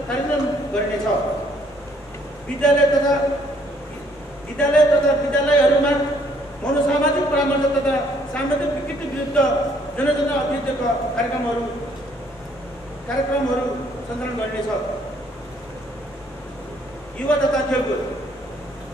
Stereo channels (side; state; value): both; normal; correlation 0.65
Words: गरिनेछ। विद्यालयहरूमा मनोसामाजिक परामर्श तथा सामाजिक विकृति विरुद्ध जनचेतना अभियानका कार्यक्रमहरू सञ्चालन गरिनेछ। युवा तथा खेलकुद